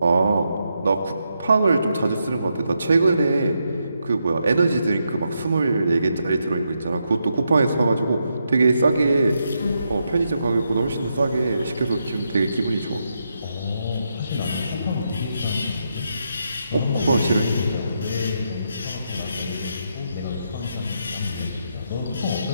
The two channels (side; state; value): both; inverted; correlation -0.82